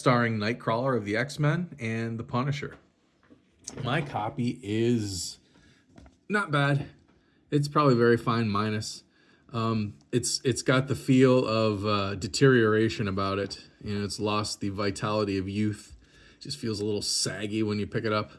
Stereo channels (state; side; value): identical; both; correlation 1.00